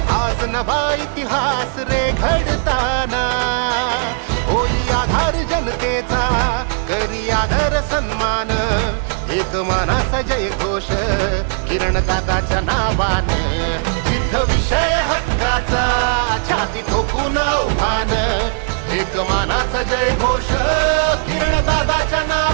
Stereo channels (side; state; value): left; silent; digital silence